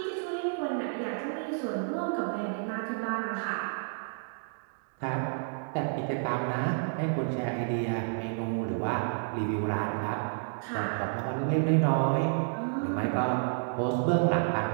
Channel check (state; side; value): silent; left; digital silence